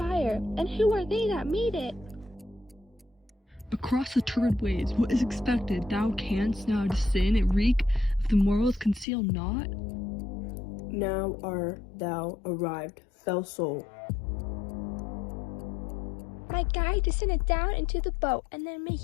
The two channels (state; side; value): drops out; right; at 9.1 s